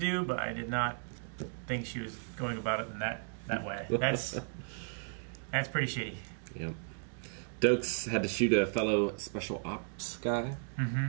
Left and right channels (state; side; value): silent; left; 55 dB below the other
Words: but I did not think she was going about it in that way. That's pretty shitty. Yep. Dokes had to shoot a fellow special ops guy. Mm-hmm.